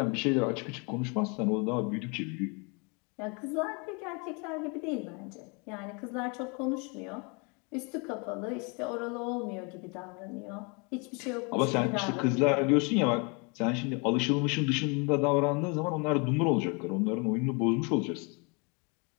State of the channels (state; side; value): quieter; right; 32.3 dB